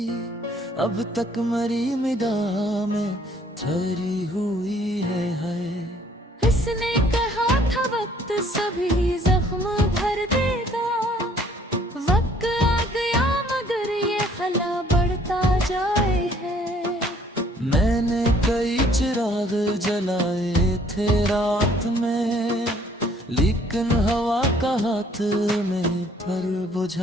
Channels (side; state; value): both; normal; correlation 0.60